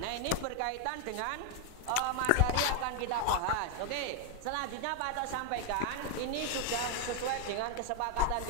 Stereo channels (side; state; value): both; different; correlation 0.00